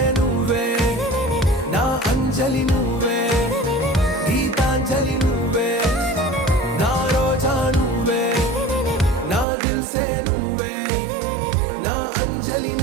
నువ్వే నా అంజలి నువ్వే గీతాంజలి నువ్వే నా రోజా నువ్వే నా దిల్ సే నువ్వే నా అంజలి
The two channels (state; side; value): drops out; left; at 9.5 s